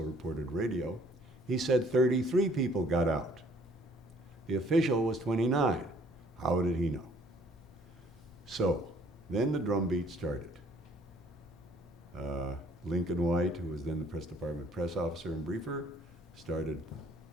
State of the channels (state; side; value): normal; both; correlation 0.59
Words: reported radio, he said 33 people got out. The official was 29. How did he know? So, then the drumbeat started. Lincoln White, who was then the press department press officer and briefer, started